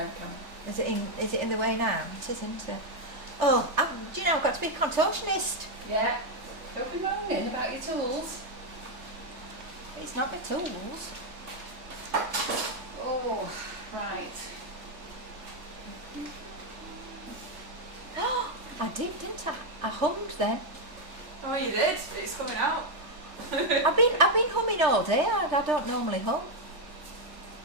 of camera. Is it in the way now? It isn't. Oh, do you know I've got to be a contortionist. Yeah. Don't be moaning about your tools. It's not my tools. Oh, right. I did, didn't I? I hummed then. Oh, you did. It's coming out. I've been humming all day. I don't normally hum.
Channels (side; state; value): left; late; 3.3 ms